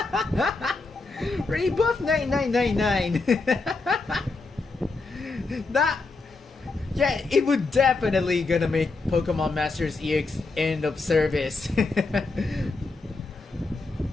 Rebuff 9999. That, yeah, it would definitely gonna make Pokemon Masters EX end of service.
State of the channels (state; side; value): quieter; right; 3.7 dB